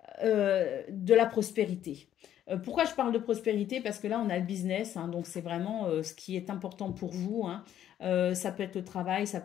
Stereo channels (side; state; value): right; quieter; 11.0 dB